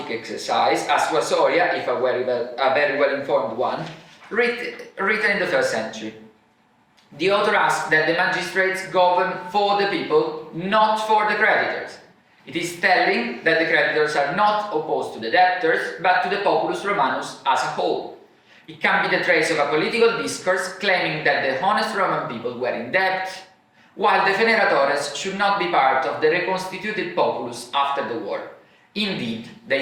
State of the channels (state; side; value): identical; both; correlation 1.00